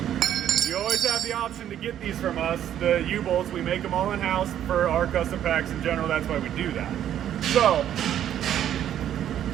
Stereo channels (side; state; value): left; quieter; 10.7 dB